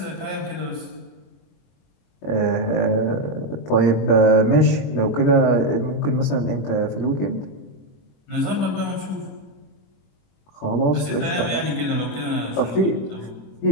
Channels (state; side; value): late; right; 21 ms